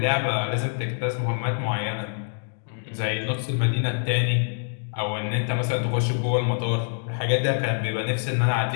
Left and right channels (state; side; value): silent; right; digital silence